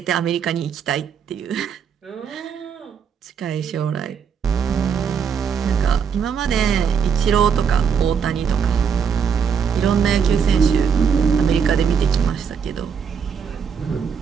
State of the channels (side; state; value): left; quieter; 6.9 dB